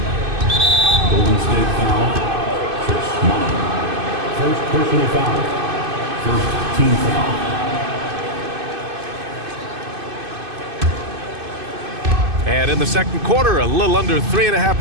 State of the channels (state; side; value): late; left; 2.5 ms